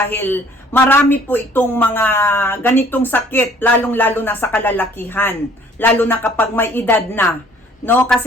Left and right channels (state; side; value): normal; both; correlation 0.56